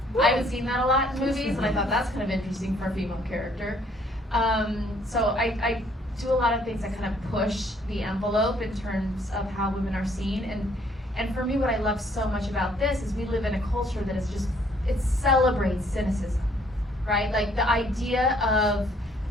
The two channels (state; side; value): normal; both; correlation 0.64